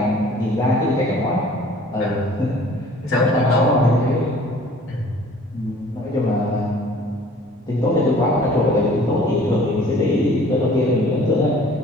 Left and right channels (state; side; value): normal; both; correlation 0.51